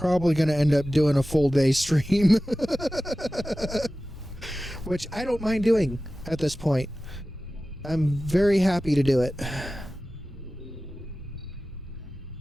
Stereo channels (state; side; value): normal; both; correlation 0.95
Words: going to end up doing a full day stream. Which I don't mind doing at this point. I'm very happy to do it.